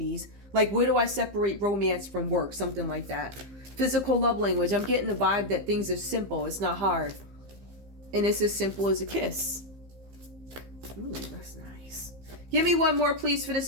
Like, where do I separate romance from work? Something like that. Physical love language. I'm getting the vibe that things are simple. It's not hard. And it's as simple as a kiss. Ooh, that's nice. Give me one more, please, for this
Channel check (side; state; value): left; late; 15 ms